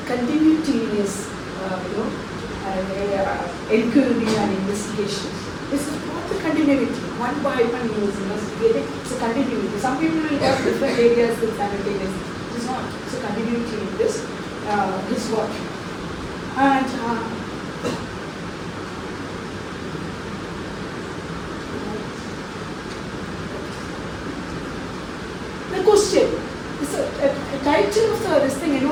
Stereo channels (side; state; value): both; identical; correlation 1.00